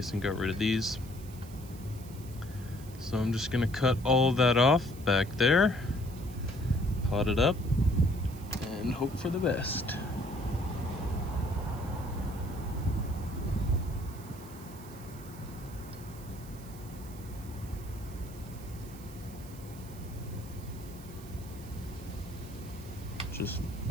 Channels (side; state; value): right; noise; hiss, 20 dB below the sound